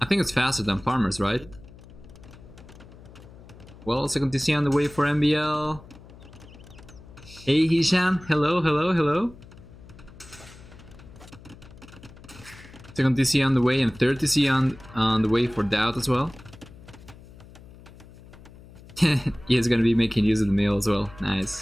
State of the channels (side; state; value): left; noise; hum, 20 dB below the sound